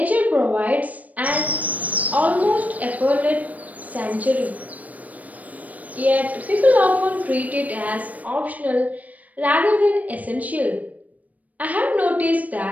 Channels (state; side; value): late; left; 0.072 ms